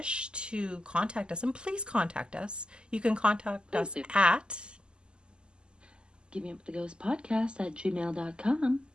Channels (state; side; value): late; left; 0.048 ms